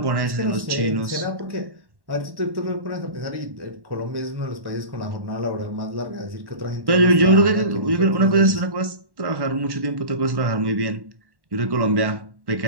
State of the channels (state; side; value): late; left; 1.1 ms